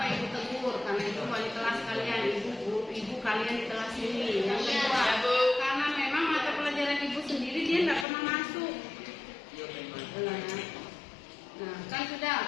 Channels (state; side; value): drops out; right; at 8.1 s